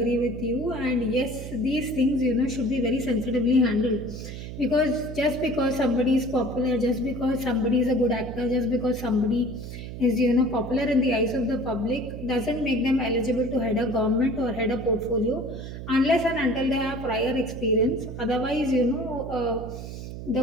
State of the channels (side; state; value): right; noise; hum, 9 dB below the sound